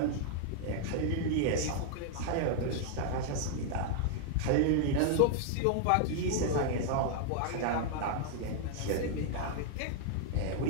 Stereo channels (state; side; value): different; both; correlation 0.00